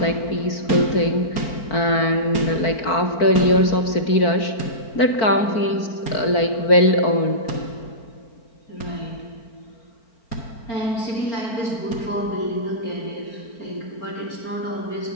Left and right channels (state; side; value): late; right; 4.5 ms